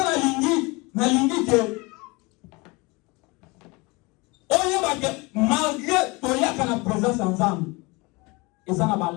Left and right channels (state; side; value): quieter; right; 25.7 dB